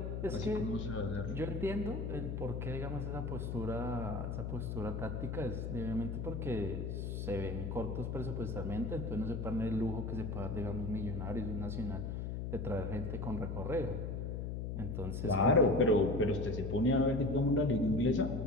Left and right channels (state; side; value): noise; left; hum, 3 dB below the sound